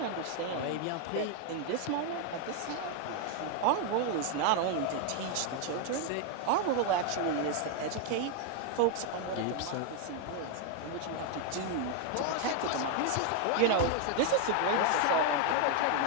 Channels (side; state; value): both; different; correlation 0.01